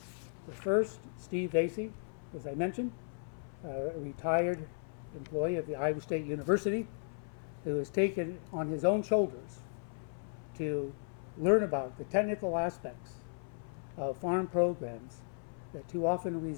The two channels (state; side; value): silent; right; 54 dB below the other